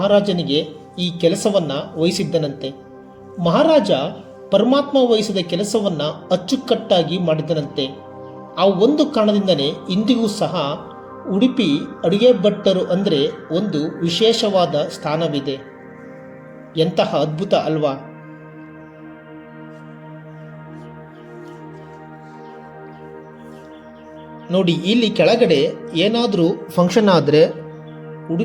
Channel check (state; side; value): identical; both; correlation 1.00